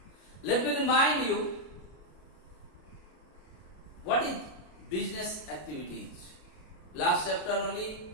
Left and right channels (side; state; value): right; late; 33 ms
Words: let me remind you what is business activities. Last chapter only